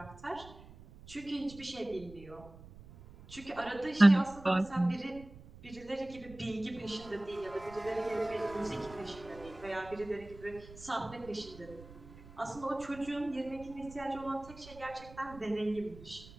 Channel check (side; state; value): right; noise; rumble, 18 dB below the sound